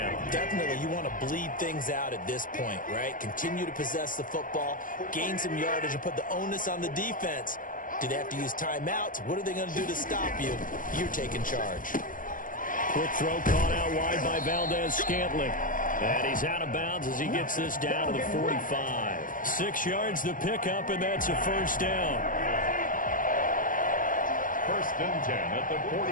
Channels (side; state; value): right; late; 0.39 ms